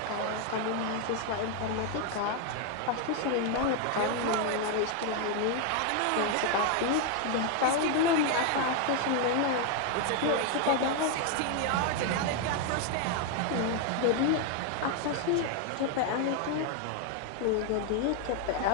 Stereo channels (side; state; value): both; different; correlation 0.01